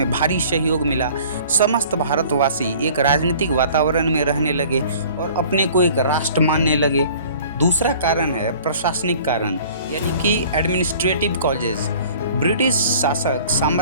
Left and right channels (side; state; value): both; inverted; correlation -0.49